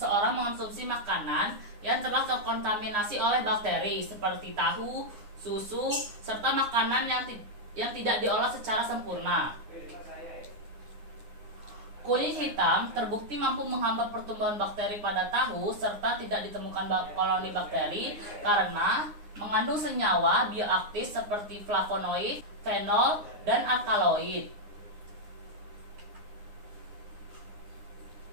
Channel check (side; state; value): left; late; 9.7 ms